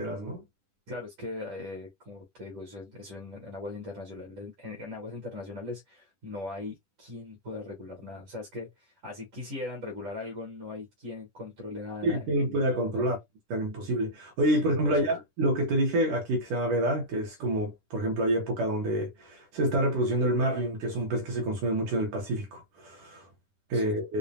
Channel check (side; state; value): left; late; 10 ms